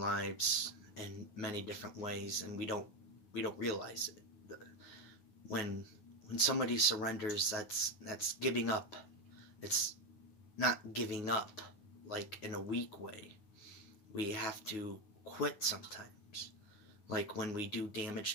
in many different ways, and we don't realize it. When when somebody surrenders, that's giving up. It's not giving up like in a weak way. We have to quit sometimes. Like when we do damage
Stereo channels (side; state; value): right; late; 9.5 ms